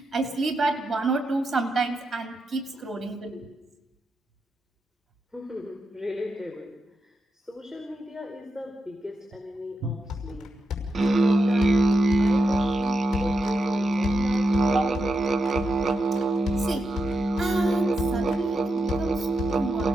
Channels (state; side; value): normal; both; correlation 0.86